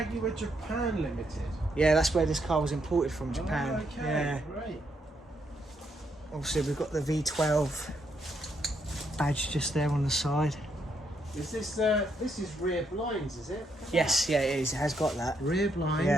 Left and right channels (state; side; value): normal; both; correlation 0.76